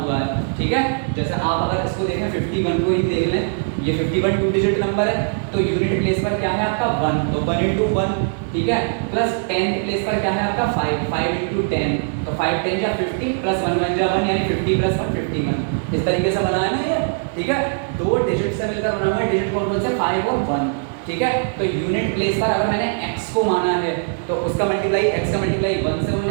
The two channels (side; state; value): left; silent; 65 dB below the other